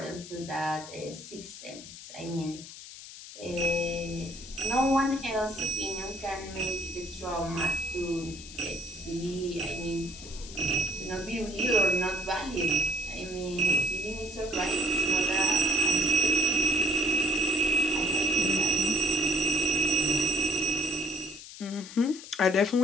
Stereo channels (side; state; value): left; noise; hiss, 14 dB below the sound